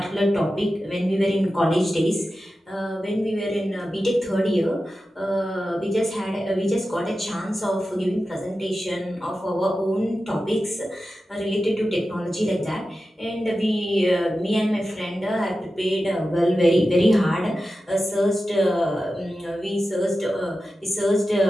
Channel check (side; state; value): both; normal; correlation 0.93